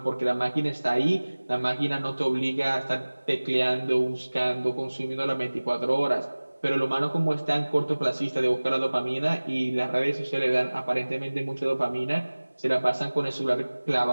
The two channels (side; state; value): both; inverted; correlation -1.00